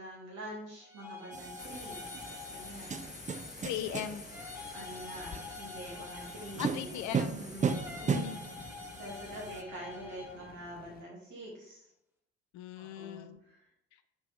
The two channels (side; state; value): both; normal; correlation 0.45